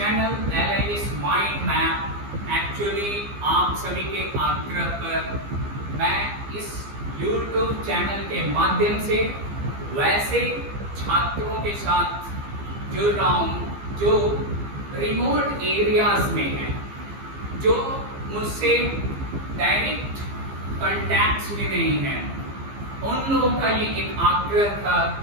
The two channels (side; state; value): left; late; 15 ms